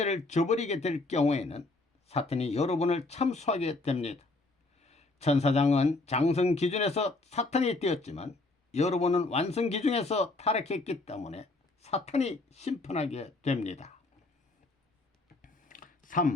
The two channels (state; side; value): quieter; right; 3.1 dB